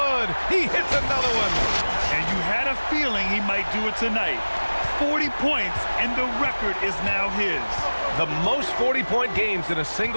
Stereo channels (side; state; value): both; inverted; correlation -1.00